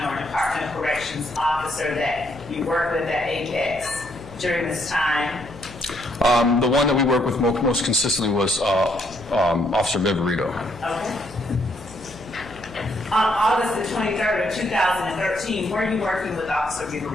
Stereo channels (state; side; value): noise; left; hum, 19 dB below the sound